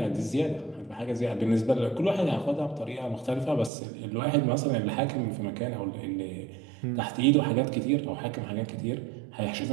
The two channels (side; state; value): left; drops out; at 3.7 s